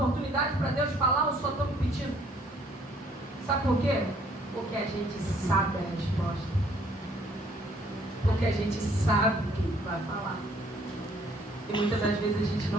para Deus falar ou só estamos pedindo? Sabe por quê? Porque a gente sabe a resposta. Porque a gente sabe o que Ele vai falar. E muitas das vezes a gente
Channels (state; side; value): normal; both; correlation 0.62